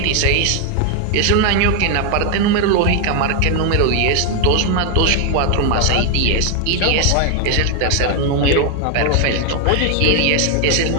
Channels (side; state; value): both; different; correlation 0.00